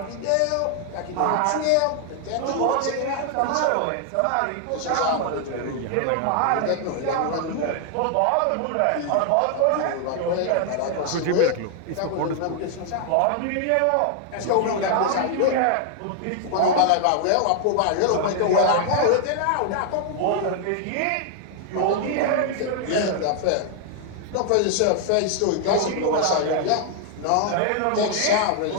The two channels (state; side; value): different; both; correlation 0.00